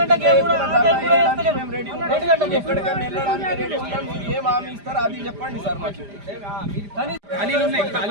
మేము రెడీ ఉంటాం, ఎక్కడికైనా వెళ్ళడానికి రెడీ ఉంటాం. మీరు ఏం హామీ ఇస్తారో అది చెప్పండి సార్ మాకు.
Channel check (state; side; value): late; left; 5.0 ms